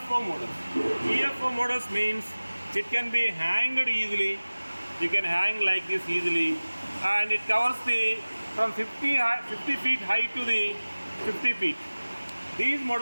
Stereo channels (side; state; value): both; inverted; correlation -1.00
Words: models. UFO models means it can be hanged easily. You can hang like this easily, and it covers the from 50 feet high to the 50 feet. These